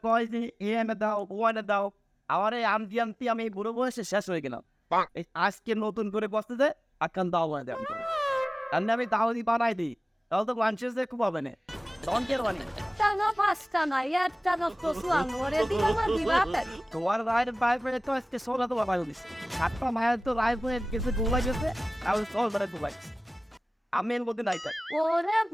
কয় যে এ এনে দাও, ও এনে দাও, আমার এই আনতি আনতি আমি এই বুড়ো বয়সে শেষ হয়ে গেলাম। এই আজকে নতুন করে বসতে দে, আকান দাও বানাই দেয় আর আমি দাও দি বানাই দিই, তাহলে তো মানুষের যে খুব হবে না। তখন কে বানি টানা পাঁচটা না একটা না কসুয়ান ওরে দিলাম আর দিবাতে তোমার রায়ের বাইরে পেয়ে তো আজকে সোলা তো বানাই দিচ্ছে। সাতটা মায়ের তো রায় হয়ে গেছে, গোলা গেছে, আর সল মানে গোলাই আমি এর মধ্যে নাই তাই। ওরে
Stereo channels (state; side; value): normal; both; correlation 0.97